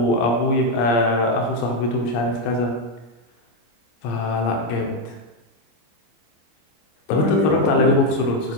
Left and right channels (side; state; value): right; late; 26 ms